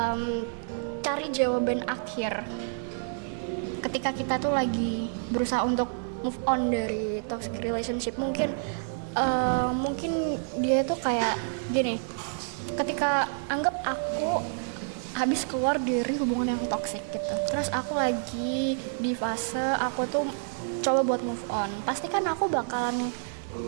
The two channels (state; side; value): silent; left; digital silence